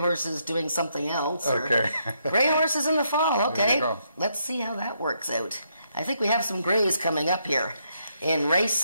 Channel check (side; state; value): both; inverted; correlation -0.76